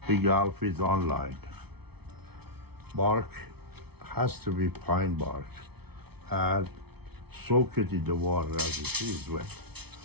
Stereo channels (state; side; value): late; left; 0.98 ms